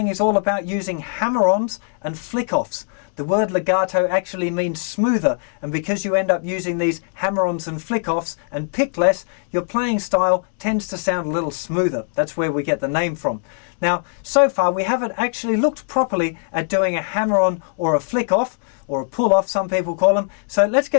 is all about using hammer-ons and flick-offs. The word legato actually means smoother, and because you end up using these hammer-ons and flick-offs and pick less, your playing style tends to sound a little smoother. That's where we get the name from. Now, so far we haven't actually looked properly at doing a hammer-on or a flick-off, or a pull-off, some people call them. So let's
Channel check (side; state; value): right; silent; digital silence